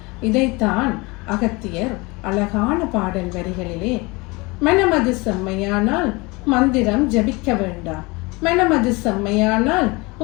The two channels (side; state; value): right; quieter; 25.4 dB